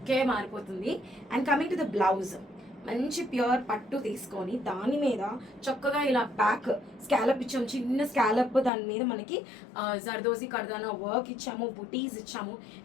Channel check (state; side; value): drops out; right; at 8.7 s